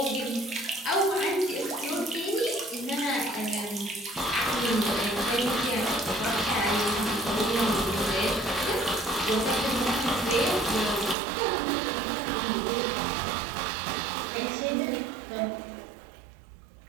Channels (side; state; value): left; drops out; at 11.2 s